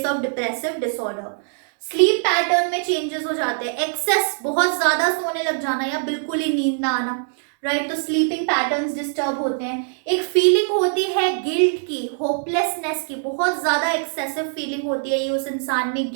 of depressive disorder. Sleep pattern में चेंजेस हो जाते हैं, एक्सेस बहुत ज्यादा सोने लग जाना या बिल्कुल ही नींद ना आना, राइट? तो स्लीपिंग पैटर्न्स डिस्टर्ब होते हैं। एक फीलिंग होती है गिल्ट की, होपलेसनेस की, बहुत ज्यादा एक्सेसिव फीलिंग होती है ये उस इंसान में,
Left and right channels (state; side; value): silent; left; 64 dB below the other